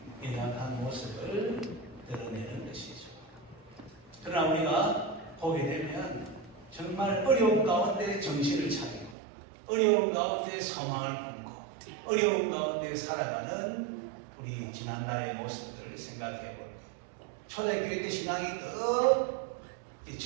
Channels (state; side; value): drops out; left; at 9.2 s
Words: 연약한 모습을 드러내는 것이죠. 그러나 우리가 보게 되면 정말 어려운 가운데 정신을 차리고 어려운 가운데 소망을 품고 어려운 가운데 살아가는 우리 지난날의 모습들을 생각해 볼게요. 초대교회 때 신앙이 더